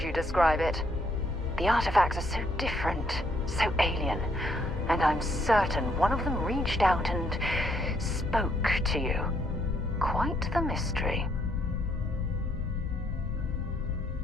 you describe it? The artifacts are so different, so alien, and I'm certain one of them reached out and spoke to you. Quite the mystery.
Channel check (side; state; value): both; normal; correlation 0.70